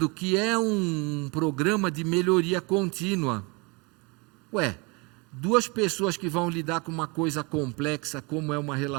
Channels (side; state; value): left; quieter; 28.7 dB